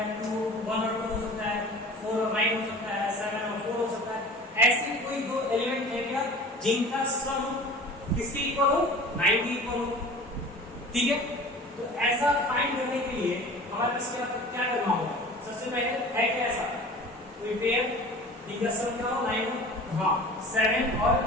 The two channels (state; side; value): normal; both; correlation 0.41